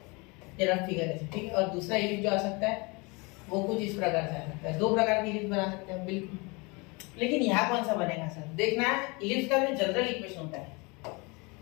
ये रफ फिगर है। ठीक है, और दूसरा इलिप्स जो आ सकता है वो कुछ इस प्रकार से आ सकता है। 2 प्रकार की इलिप्स बना सकते हैं बिल्कुल। लेकिन यहाँ कौन सा बनेगा सर? देखना, इलिप्स का जो जनरल इक्वेशन होता है,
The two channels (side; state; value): right; quieter; 28.0 dB